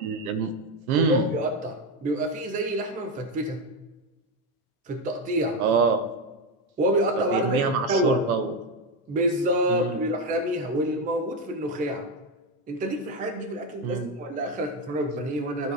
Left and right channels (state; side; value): normal; both; correlation 0.10